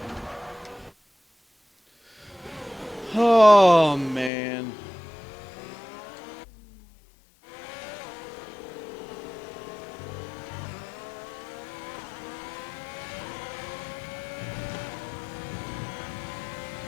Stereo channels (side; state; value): right; drops out; at 4.3 s